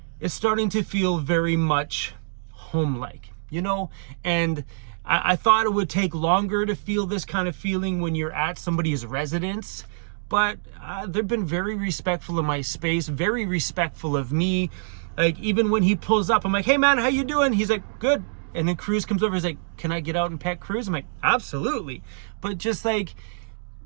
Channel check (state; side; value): silent; left; digital silence